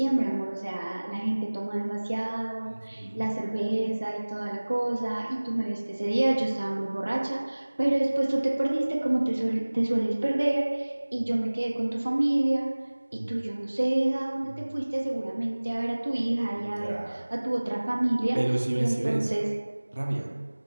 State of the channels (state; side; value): inverted; both; correlation -1.00